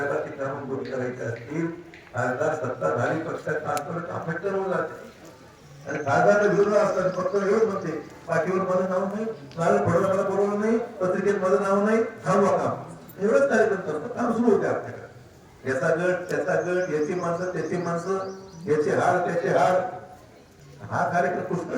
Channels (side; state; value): both; identical; correlation 1.00